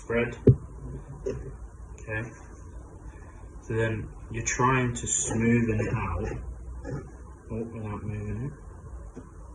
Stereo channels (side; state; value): both; identical; correlation 1.00